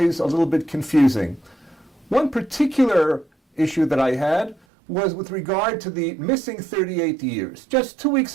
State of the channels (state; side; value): drops out; left; at 4.5 s